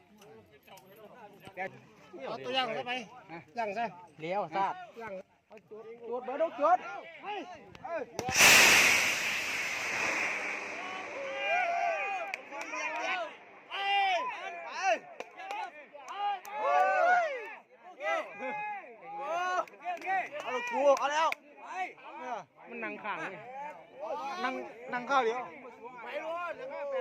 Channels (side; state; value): both; identical; correlation 1.00